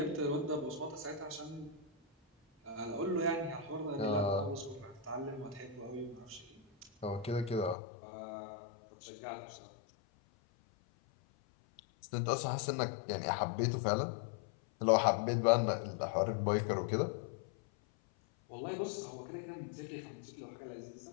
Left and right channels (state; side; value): drops out; right; at 7.8 s